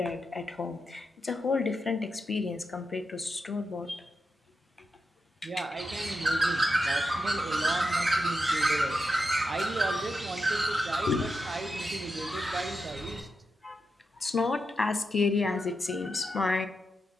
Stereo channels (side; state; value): both; normal; correlation 0.87